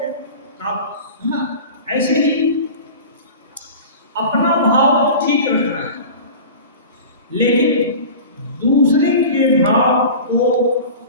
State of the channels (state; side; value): inverted; both; correlation -0.36